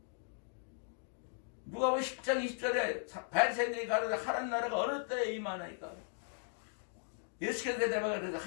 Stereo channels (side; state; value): right; silent; 53 dB below the other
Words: 누가복음 10장 20절에 바리새인들이 가르쳐 하나님 나라가 어느 때에 임하나이까. 예수께서 대답하여 그래서